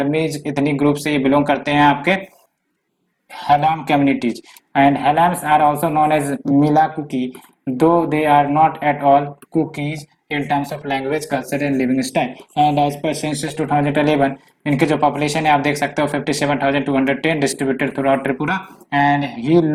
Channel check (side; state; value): both; identical; correlation 1.00